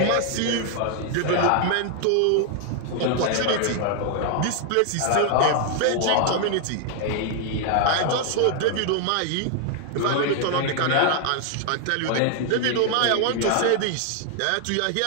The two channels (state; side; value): different; both; correlation 0.00